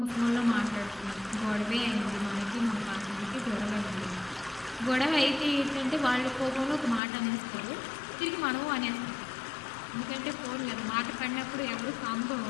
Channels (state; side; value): drops out; right; at 7.0 s